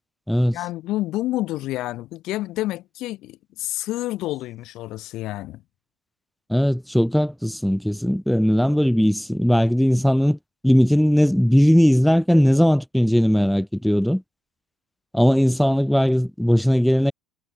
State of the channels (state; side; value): normal; both; correlation 0.97